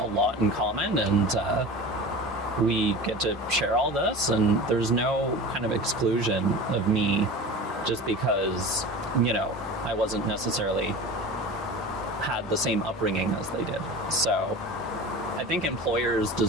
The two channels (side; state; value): both; normal; correlation 0.34